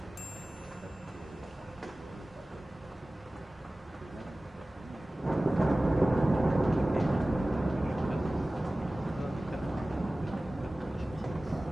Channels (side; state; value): both; normal; correlation 0.97